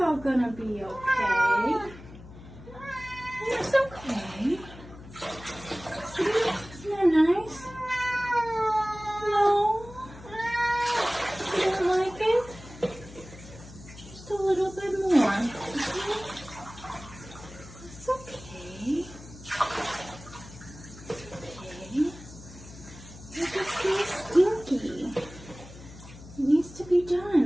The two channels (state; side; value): noise; left; hum, 17 dB below the sound